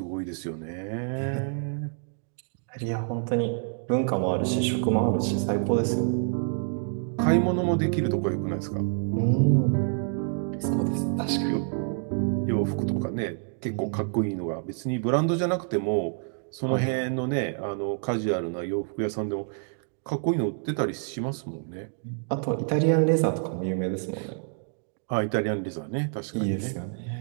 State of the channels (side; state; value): left; silent; 60 dB below the other